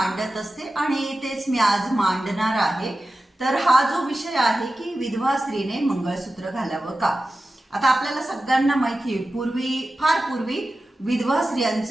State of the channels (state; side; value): normal; both; correlation 0.94